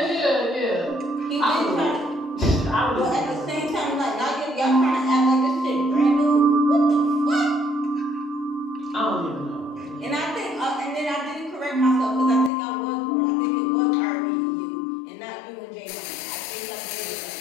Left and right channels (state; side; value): drops out; right; at 12.5 s